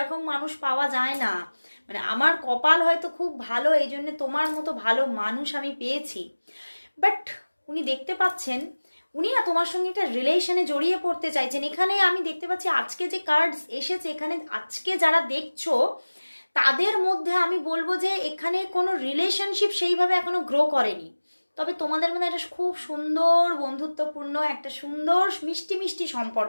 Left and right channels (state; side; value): inverted; both; correlation -1.00